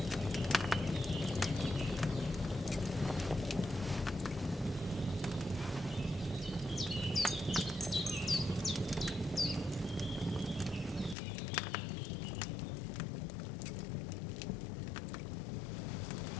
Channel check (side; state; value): right; drops out; at 11.2 s